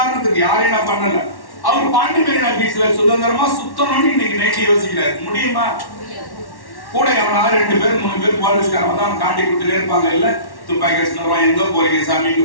யாரையும் நான் பண்ணல, அவர் பாண்டி மெரினா பீச்ல சுதந்திரமா சுத்தணும்னு இன்னைக்கு நைட்டு யோசிக்கிறாரு. முடியுமா? கூட எவனாவது 2 பேர் 3 பேர் போலீஸ்காரன் வந்து அவன் காட்டி கொடுத்துட்டே இருப்பாங்க. இல்ல துப்பாக்கி வச்சுருவான், எங்க போறீங்க சாமி,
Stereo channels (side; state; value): right; late; 1.1 ms